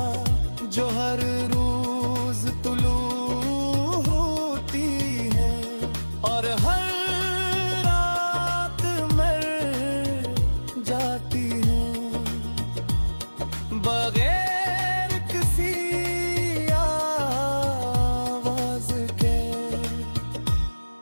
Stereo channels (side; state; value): both; inverted; correlation -1.00